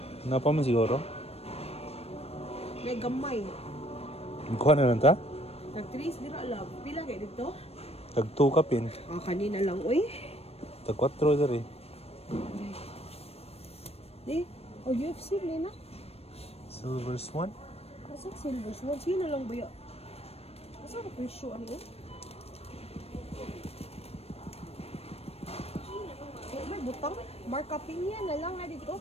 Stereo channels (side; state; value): right; late; 0.29 ms